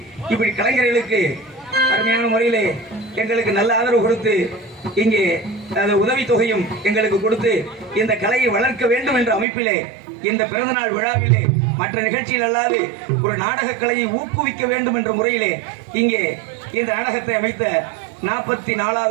இப்படி கலைஞர்களுக்கு அருமையான முறையிலே எங்களுக்கு நல்ல ஆதரவு கொடுத்து இங்கே உதவித்தொகையும் எங்களுக்கு கொடுத்து இந்த கலையை வளர்க்க வேண்டும் என்ற அமைப்பிலே இந்த பிறந்தநாள் விழாவிலே மற்ற நிகழ்ச்சியில் அல்லாது ஒரு நாடக கலையை ஊக்குவிக்க வேண்டும் என்ற முறையிலே இங்கே இந்த நாடகத்தை அமைத்த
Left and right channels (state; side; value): drops out; left; at 9.5 s